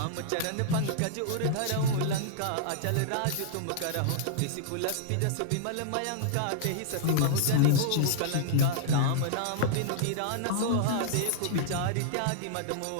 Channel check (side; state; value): both; different; correlation -0.01